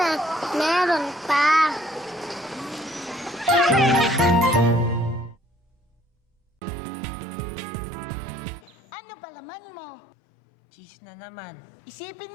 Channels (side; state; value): right; drops out; at 8.8 s